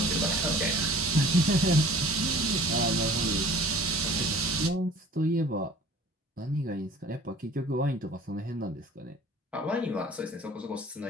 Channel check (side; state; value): both; normal; correlation 0.48